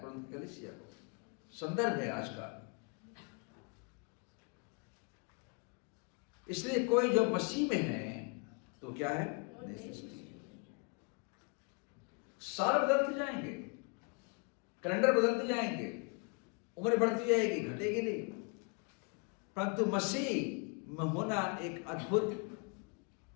कुरिन्थ कलीसिया को, संदर्भ है आज का। इसलिए कोई जो मसीह में है तो क्या है, नई सृष्टि। साल बदलते जाएंगे, कैलेंडर बदलते जाएंगे, उम्र बढ़ती जाएगी, घटेगी नहीं, परंतु मसीह में होना एक अद्भुत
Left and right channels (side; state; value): right; quieter; 35.7 dB